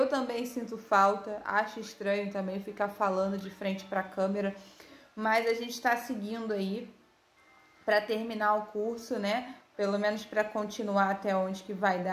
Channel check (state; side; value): identical; both; correlation 1.00